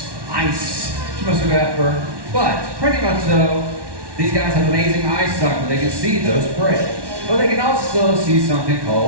ice, she mostly go after. But pretty much though, these guys have amazing eyesight where they can see those prey. But they can also see something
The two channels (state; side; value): late; left; 1.1 ms